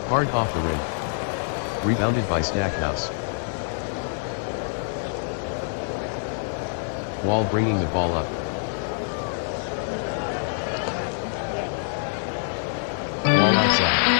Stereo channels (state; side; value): silent; right; digital silence